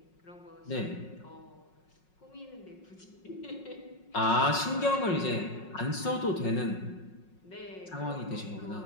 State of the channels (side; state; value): right; late; 5.5 ms